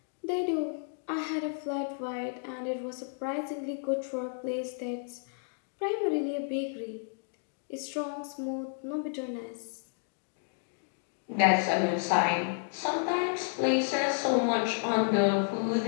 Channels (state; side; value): silent; right; digital silence